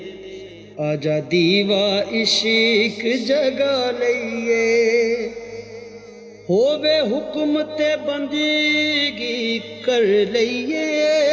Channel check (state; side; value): identical; both; correlation 1.00